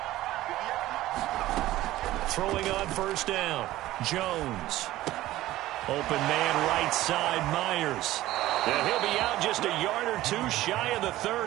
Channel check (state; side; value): quieter; left; 15.7 dB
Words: Throwing on first down, Jones. Open man right side, Myers. And he'll be out just a yard or two shy of the